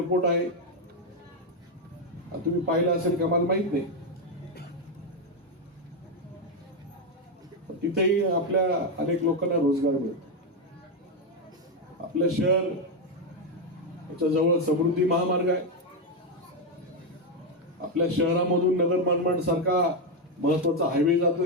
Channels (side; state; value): both; normal; correlation 0.05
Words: आहे. तुम्ही पाहिलं असेल का मला माहित नाही. तिथेही आपल्या अनेक लोकांना रोजगार मिळतो. आपलं शहर याच्या जवळ समृद्धी महामार्ग आहे. आपल्या शहरामधून नगर मनमाड सारखा महत्वाचा हायवे